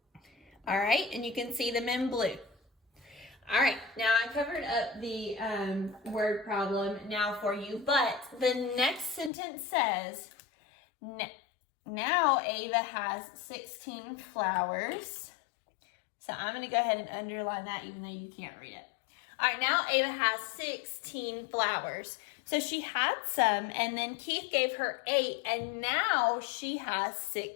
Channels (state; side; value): drops out; right; at 9.3 s